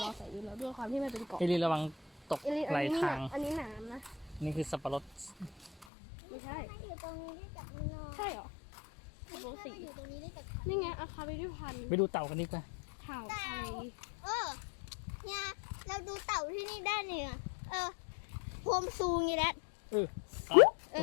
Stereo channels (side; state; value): right; drops out; at 5.9 s